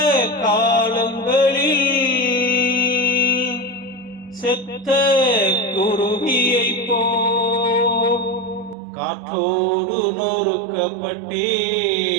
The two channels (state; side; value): drops out; left; at 8.8 s